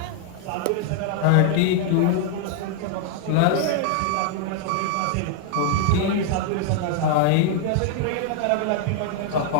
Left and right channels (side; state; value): both; different; correlation 0.00